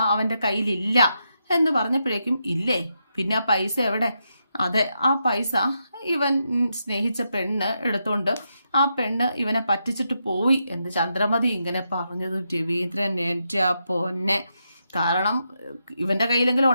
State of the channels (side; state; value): both; inverted; correlation -0.83